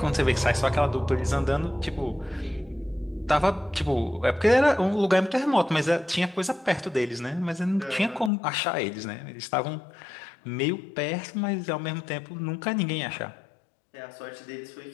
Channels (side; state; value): right; drops out; at 8.3 s